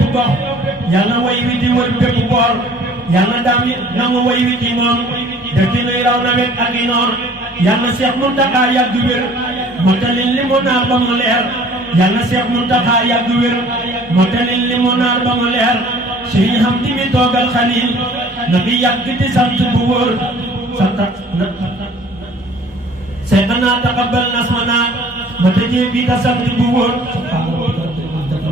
gox yàlla way wi di wër bépp boor yàlla daam yi nangu way wi ci moom dëkk nuy raw nawet ak i noor yàlla Seex Muntaxa yàgg wér motalil li mu naar ba mu leer yàlla Seex Muntaxa yàgg wér motalil li mu naar ba mu leer sëriñ xam di mi toogal Xalil na bi yàgg di sant bu wóor santa seexanaa taqabbal nasmanaa ma tëjee bii ta sant bu wóor.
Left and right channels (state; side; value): normal; both; correlation 0.52